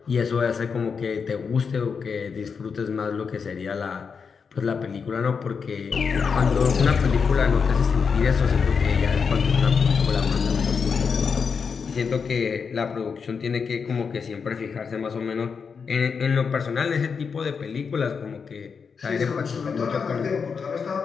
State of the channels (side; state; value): right; quieter; 5.8 dB